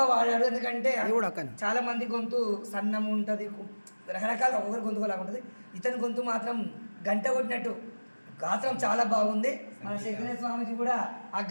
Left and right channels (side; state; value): both; inverted; correlation -1.00